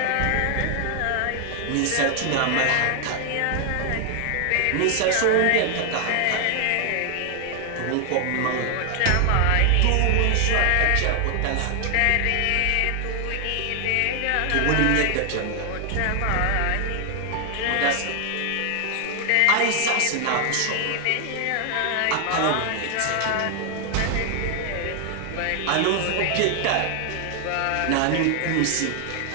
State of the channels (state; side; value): different; both; correlation 0.00